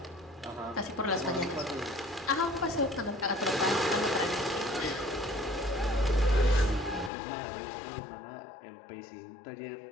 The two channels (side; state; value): right; drops out; at 7.1 s